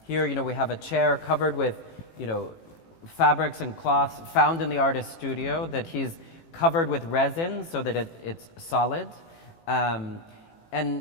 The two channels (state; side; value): late; right; 18 ms